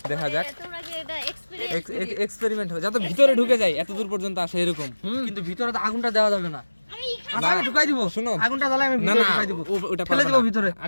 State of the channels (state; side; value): inverted; both; correlation -1.00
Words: দেখা যাক এক্সপেরিমেন্ট হবে যাতে ভিতরে ঢুকে যায় এত দূর পর্যন্ত আসে এরকম কিন্তু ভিতরে তো আগুনটা দেওয়া যাবে না আচ্ছা আমি ঢুকাই দিব শুনো আগুনটা জ্বালাই আমি ভিতরে ঢুকাই দিব ওটা ফেলে দেব ভিতরে